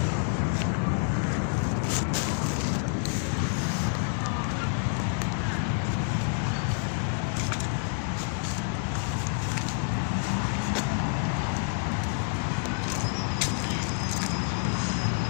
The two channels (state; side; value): silent; right; 59 dB below the other